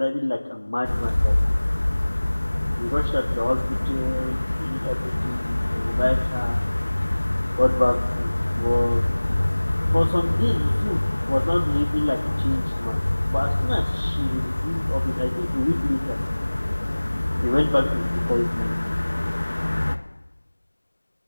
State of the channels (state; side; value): inverted; both; correlation -1.00